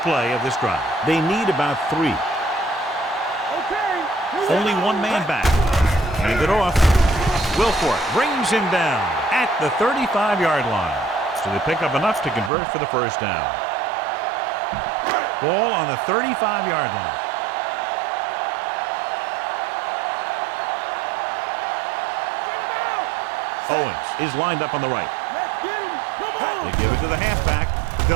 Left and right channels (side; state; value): left; drops out; at 12.5 s